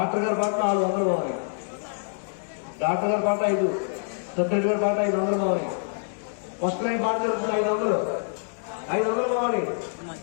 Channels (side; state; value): right; silent; digital silence